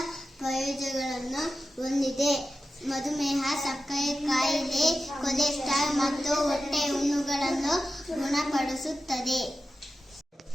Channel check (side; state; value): both; normal; correlation 0.93